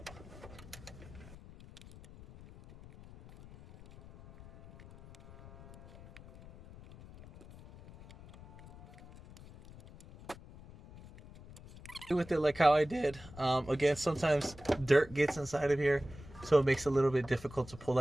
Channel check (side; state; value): left; noise; rumble, 19 dB below the sound